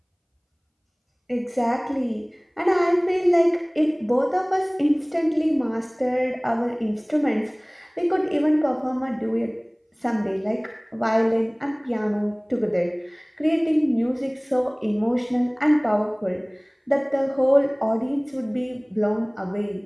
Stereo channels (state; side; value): identical; both; correlation 1.00